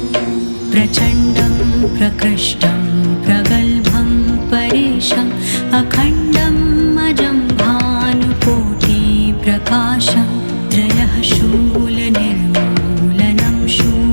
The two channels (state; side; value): inverted; both; correlation -1.00